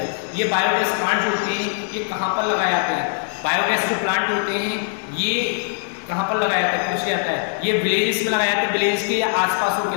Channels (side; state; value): right; silent; digital silence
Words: ये बायोगैस प्लांट जो होते हैं, ये कहाँ पर लगाए जाते हैं? बायोगैस जो प्लांट होते हैं ये कहाँ पर लगाया जाता है? पूछ जाता है। ये विलेजेस में लगाया जाता है, विलेज के या आसपास के